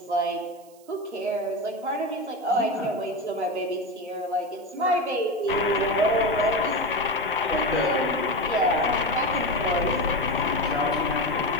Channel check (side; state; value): right; noise; hiss, 27 dB below the sound